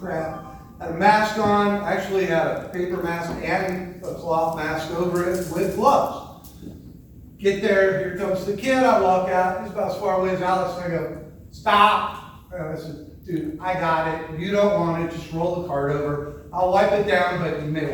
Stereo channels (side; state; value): both; identical; correlation 1.00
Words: I had a mask on, actually had a paper mask and a cloth mask over it with gloves. Get there, here comes the kid, I walk out, he's about as far away as Alex, and I go, stop. And I said, dude, I got it, you don't want it, just roll the cart over. I'll wipe it down, but you may